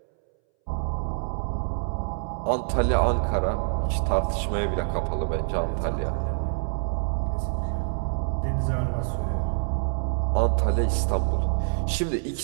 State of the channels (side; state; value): left; silent; 61 dB below the other